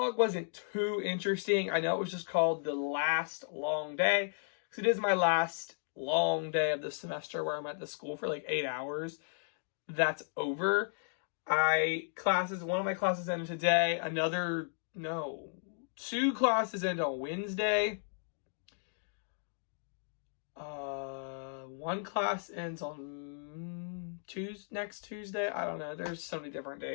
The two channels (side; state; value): right; silent; digital silence